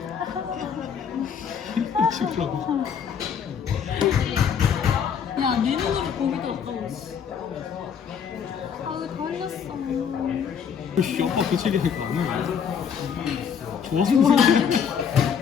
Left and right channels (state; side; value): quieter; right; 7.3 dB